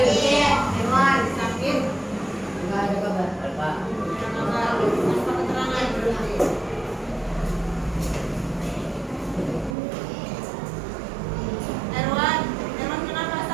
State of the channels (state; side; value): drops out; left; at 9.8 s